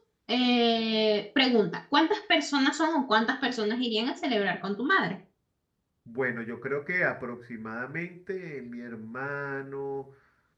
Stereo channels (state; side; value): identical; both; correlation 1.00